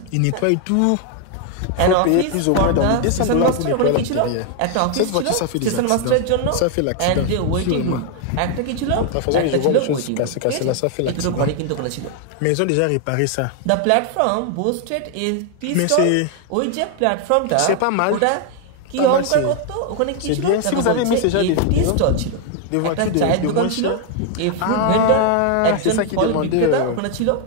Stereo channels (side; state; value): both; different; correlation 0.00